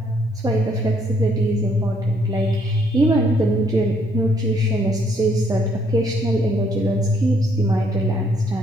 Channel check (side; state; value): both; normal; correlation 0.68